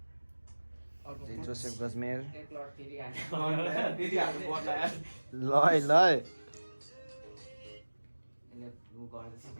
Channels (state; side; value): inverted; both; correlation -1.00